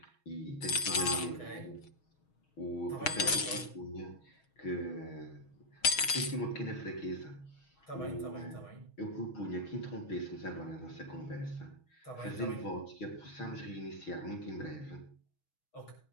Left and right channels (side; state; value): right; late; 6.3 ms